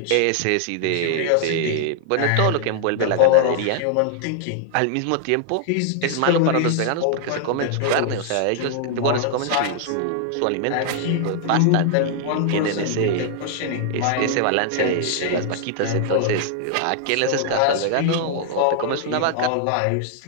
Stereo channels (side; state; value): both; different; correlation 0.00